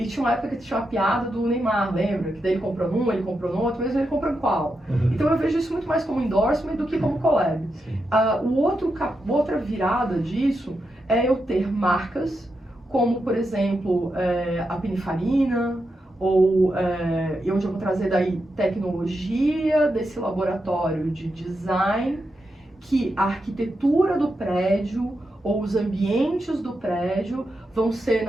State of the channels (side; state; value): both; normal; correlation 0.86